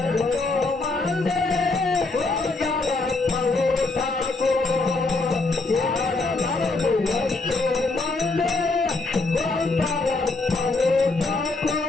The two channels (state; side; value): quieter; right; 3.5 dB